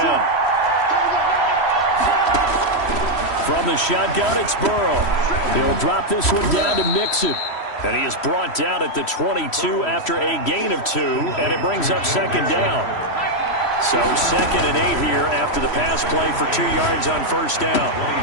From the shotgun, it's Burrow. He'll drop this one down to Mixon. And he is brought down at the 22 after a gain of 2, and it brings up 2nd down. So 2nd and 8 here after the pass play for 2 yards on 1st down.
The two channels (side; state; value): right; late; 3.1 ms